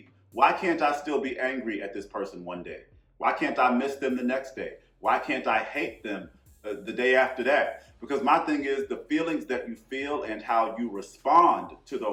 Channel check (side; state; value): both; identical; correlation 1.00